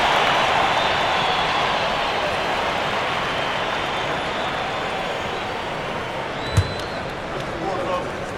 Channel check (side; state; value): both; identical; correlation 1.00